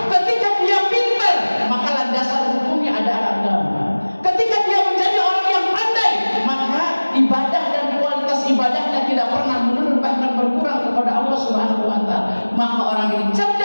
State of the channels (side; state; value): both; inverted; correlation -1.00